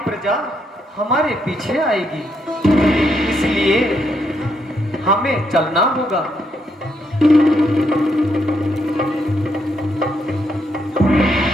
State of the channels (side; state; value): both; normal; correlation 0.77